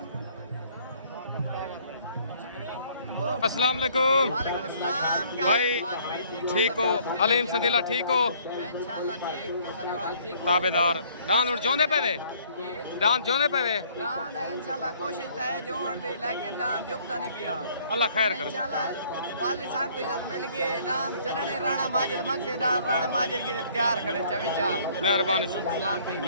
अस्सलाम वालेकुम भाई ठीक हो अलीम सदीला ठीक हो ताबेदार दान और जोंदे पे वे दान जोंदे पे वे दान इंशाल्लाह कोशिश तो है जोड़ दी लेकिन दान जुबता नहीं पिया अल्लाह खैर करे इंशाल्लाह वाली साहब को इज्जत मिल गई दान जनने राणा माजिद मक्से दान राणा माजिद की तैयार खड़े चवी चार मेहरबानी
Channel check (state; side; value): inverted; both; correlation -0.60